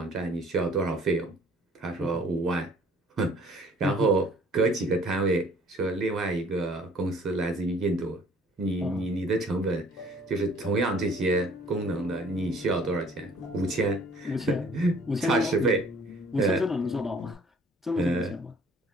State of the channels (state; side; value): normal; both; correlation 0.55